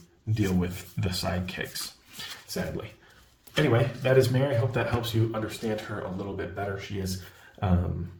deal with the sidekicks, sadly. Anyway, that is Mary. I hope that helps you understand her a little bit better. She is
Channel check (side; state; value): both; identical; correlation 1.00